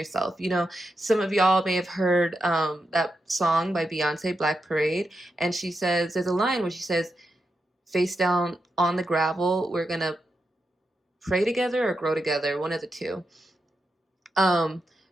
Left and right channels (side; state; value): both; normal; correlation 0.87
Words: Some of y'all may have heard that song by Beyonce, Black Parade, and she says, there's a line where she says, face down on the gravel, we're gonna pray together or grow together, one of the two.